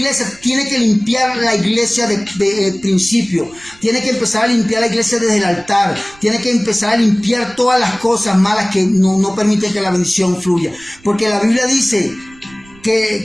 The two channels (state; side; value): noise; right; rumble, 26 dB below the sound